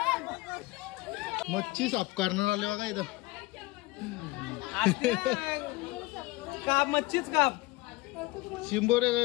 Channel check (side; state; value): right; quieter; 20.8 dB